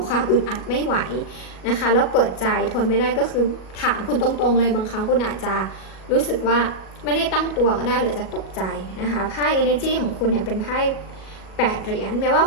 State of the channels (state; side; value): late; right; 37 ms